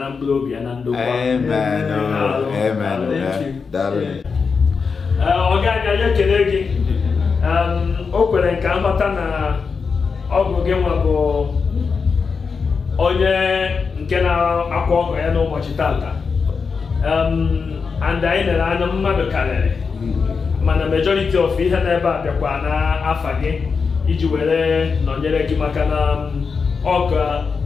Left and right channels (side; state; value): right; quieter; 5.3 dB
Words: mkpụrụ obi ya na ndokwa. Ọ ga-aga ya ekele gị o kwere nke nghọta na ọ bụ gị nwa bụ onye nke na-akwa ọgọ ya n'ụbọchị taata and anyị lere anya mmadụ karịrị mana majority of ihe n'ebe a bịakwa n'afa gị iji were nọnyere gị maka na ọka